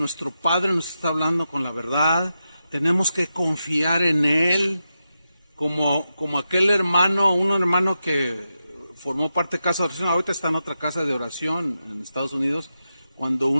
Padre nos está hablando con la verdad. Tenemos que confiar en Él, como aquel hermano, un hermano que formó parte de casa de oración, ahorita está en otra casa de oración en Estados Unidos, cuando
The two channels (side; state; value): both; inverted; correlation -0.89